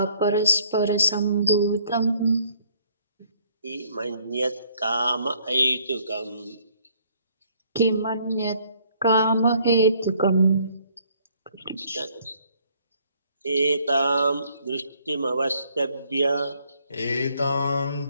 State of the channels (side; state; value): both; inverted; correlation -0.63